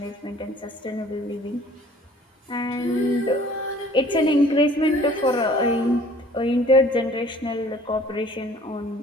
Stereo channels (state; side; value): normal; both; correlation 0.53